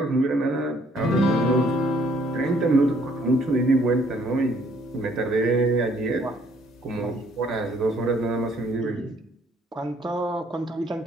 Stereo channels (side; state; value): both; normal; correlation 0.64